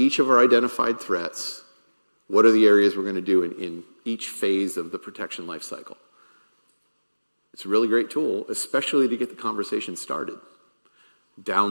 of our identified threats. What are the areas we're going to do in each phase of the protection lifecycle? It's a really great tool, especially to get the conversation started.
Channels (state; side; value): inverted; both; correlation -1.00